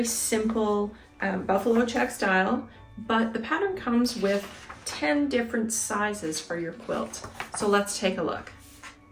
simple buffalo check style, but the pattern comes with 10 different sizes for your quilt. So let's take a look.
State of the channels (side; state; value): both; identical; correlation 1.00